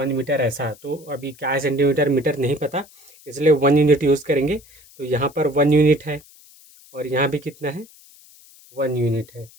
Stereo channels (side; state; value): left; noise; hiss, 25 dB below the sound